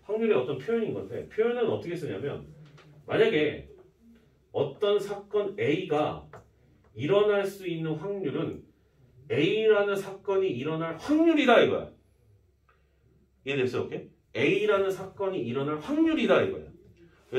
확률의 어떤 표현인 건데 표현은 어떻게 쓰냐면 만약에 어떤 사건 A가 일어날 수 있는 확률은 A라는 사건이 일어날 확률이다 이거야. 이해됐어요? 오케이? A라는 사건이 일어날 확률이다 이거야.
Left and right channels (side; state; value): both; identical; correlation 1.00